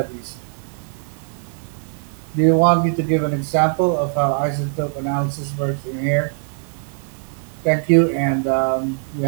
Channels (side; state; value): left; silent; 65 dB below the other